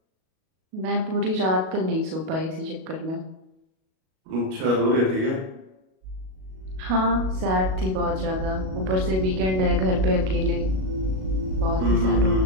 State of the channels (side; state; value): left; late; 37 ms